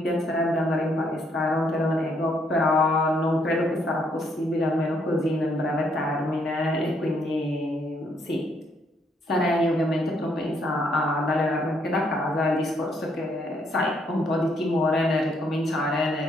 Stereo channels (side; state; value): both; normal; correlation 0.71